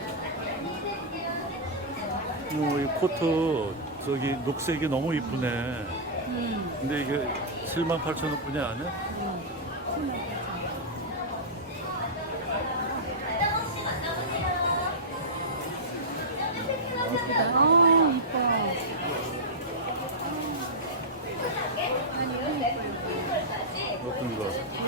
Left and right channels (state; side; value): normal; both; correlation -0.10